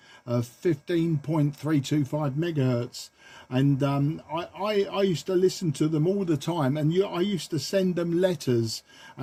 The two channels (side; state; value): both; identical; correlation 1.00